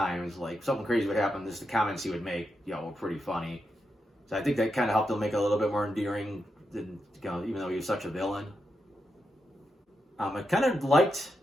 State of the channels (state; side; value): normal; both; correlation 0.86